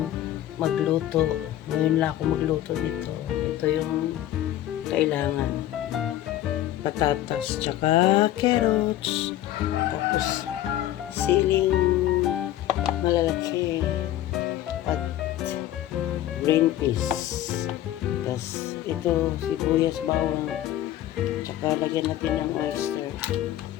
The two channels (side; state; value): right; quieter; 13.2 dB